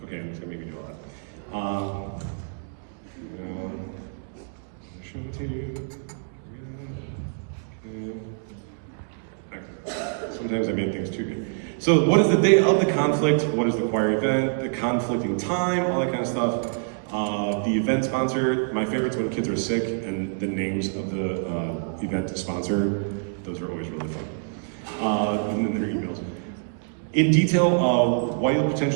Okay, I'm just gonna make you do all that. Show it to you. Sometimes I made things too good. So what is the day of the conflict? What is the choir event? The conflicting time, all that kind of stuff. The event sponsor, my favorite's when kids are sick and the names of the event sponsor. Those are always really fun. And then their emails. In detail, why you'll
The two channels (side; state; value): left; silent; digital silence